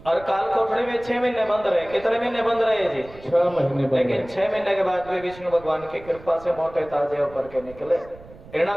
और काल कोठड़ी में 6 महीने बंद रहे। कितने महीने बंद रहे जी? 6 महीने। लेकिन 6 महीने के बाद भी विष्णु भगवान की कृपा से मोटे ताजे होकर के निकले।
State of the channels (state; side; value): noise; right; rumble, 20 dB below the sound